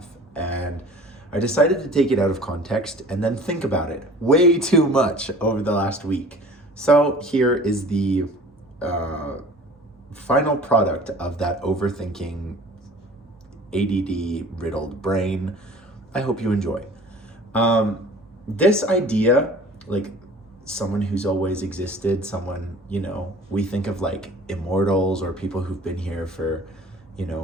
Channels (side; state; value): both; normal; correlation 0.46